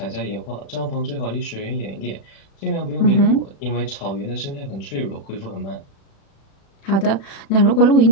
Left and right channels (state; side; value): late; right; 36 ms